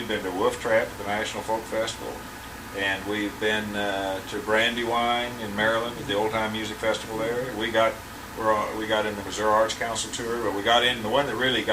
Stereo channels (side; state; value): both; identical; correlation 1.00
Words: been to Wolf Trap at the National Folk Festival, and we've been to Brandywine in Maryland at the Old Time Music Festival there. We got in the Missouri Arts Council tour, but we got in the one that really